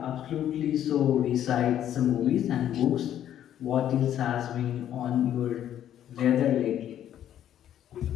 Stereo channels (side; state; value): right; quieter; 10.9 dB